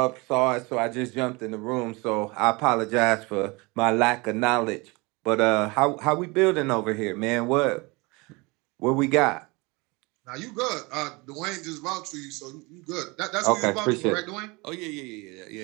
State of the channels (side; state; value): left; quieter; 26.1 dB